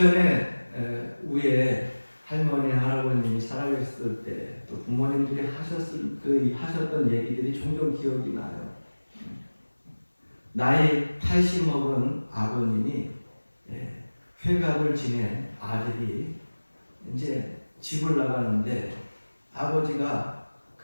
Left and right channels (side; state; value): both; inverted; correlation -1.00